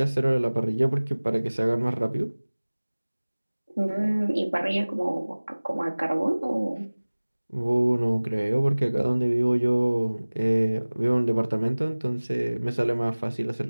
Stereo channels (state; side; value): inverted; both; correlation -1.00